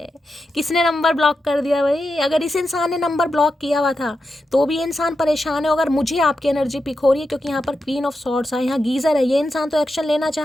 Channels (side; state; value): both; normal; correlation 0.88